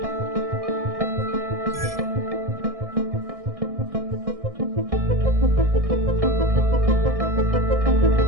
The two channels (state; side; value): late; left; 1.6 ms